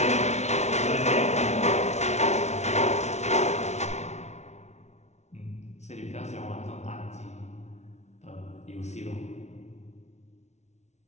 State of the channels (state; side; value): late; right; 0.32 ms